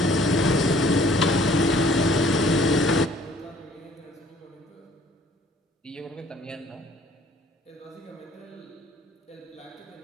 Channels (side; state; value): both; normal; correlation 0.57